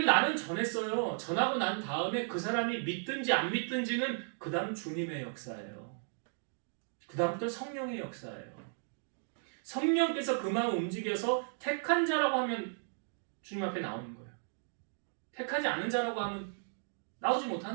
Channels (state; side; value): silent; left; digital silence